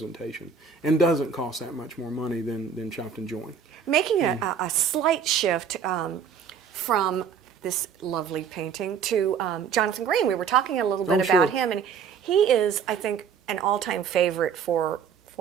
and doesn't cost that much more money than chopped and joined. Making a slight shift from this lovely painting to Jonathan Green. We were talking a little bit Oh, sure. about him, and he is, I think, an all-time favorite for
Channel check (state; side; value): quieter; left; 6.8 dB